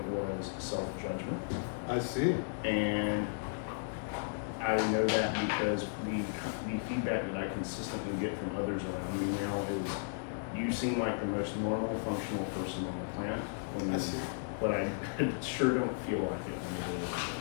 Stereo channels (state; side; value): silent; right; digital silence